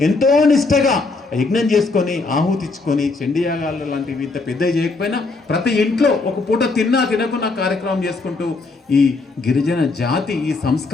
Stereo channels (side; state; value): right; quieter; 3.8 dB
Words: ఎంతో నిష్టగా యజ్ఞం చేసుకొని ఆహుతిచ్చుకొని చండీయాగాలు లాంటివి ఇంత పెద్ద చేయకపోయినా ప్రతి ఇంట్లో ఒక పూట తిన్నా తినకున్న కార్యక్రమం చేసుకుంటూ ఈ గిరిజన జాతి ఈ